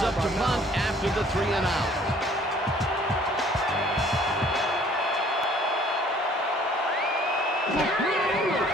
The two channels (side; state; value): both; normal; correlation 0.56